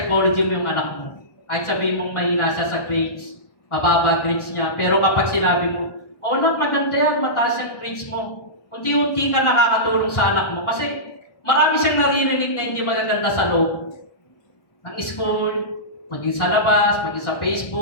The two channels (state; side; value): late; right; 1.4 ms